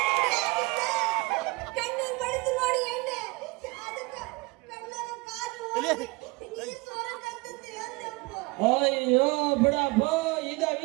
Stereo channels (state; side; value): quieter; left; 25.3 dB